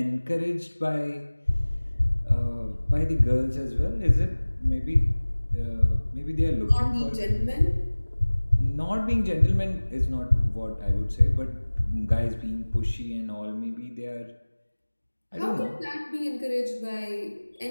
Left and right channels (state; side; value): inverted; both; correlation -1.00